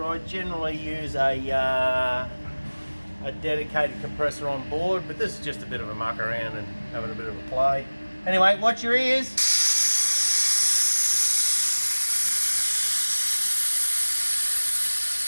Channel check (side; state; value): both; inverted; correlation -1.00